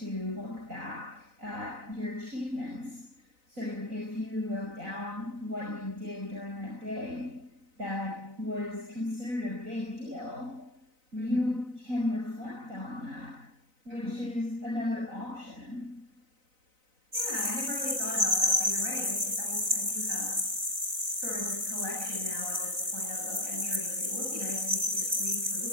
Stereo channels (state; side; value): late; left; 3.9 ms